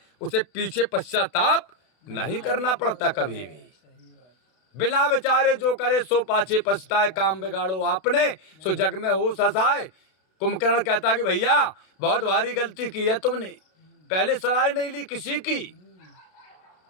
उसे पीछे पश्चाताप नहीं करना पड़ता कभी भी। बिना विचारे जो करे सो पाछे पछताए, काम बिगाड़ो आपने सो जग में हो ससाए। कुंभकर्ण कहता कि भैया बहुत भारी गलती की है तुमने, पहले सलाह नहीं ली किसी की।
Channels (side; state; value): right; late; 32 ms